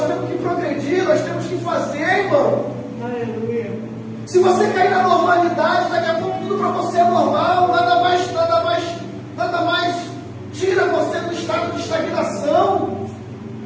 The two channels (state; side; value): identical; both; correlation 1.00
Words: temos que progredir, nós temos que fazer, irmão. Aleluia. Se você cair na normalidade, daqui a pouco tudo para você é normal, nada mais tira você do estado de estagnação.